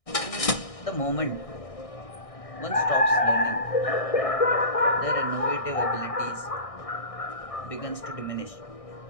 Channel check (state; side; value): late; right; 1.6 ms